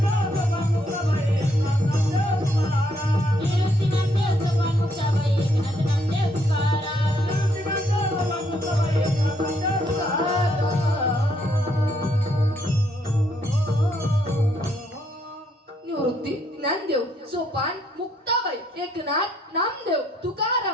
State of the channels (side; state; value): both; normal; correlation 0.72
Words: ज्ञानदेव, सोपान, मुक्ताबाई, एकनाथ, नामदेव,